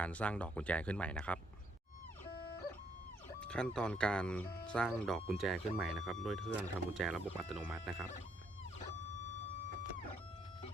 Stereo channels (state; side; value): normal; both; correlation 0.71